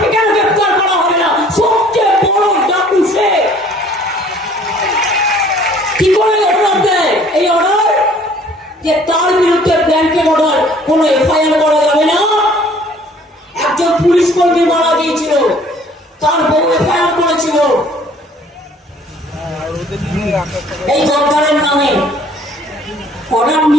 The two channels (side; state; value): both; normal; correlation 0.56